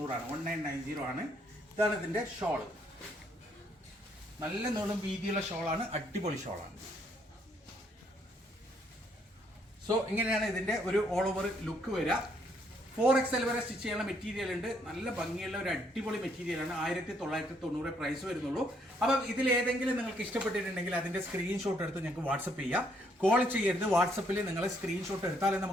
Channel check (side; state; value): both; normal; correlation 0.70